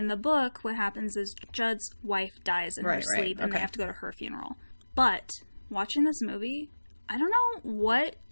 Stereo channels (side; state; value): both; inverted; correlation -1.00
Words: the book, what happens is Judd's wife dies in her sleep, and they have to go to her funeral. But watching this movie, I don't know what